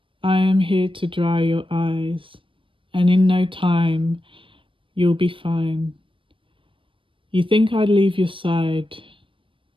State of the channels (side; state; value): left; late; 0.25 ms